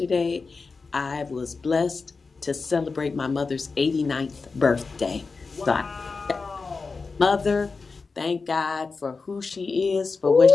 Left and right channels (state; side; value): quieter; right; 4.4 dB